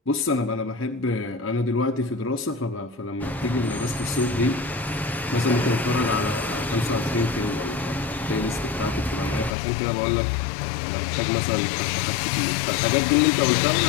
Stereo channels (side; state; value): right; drops out; at 9.5 s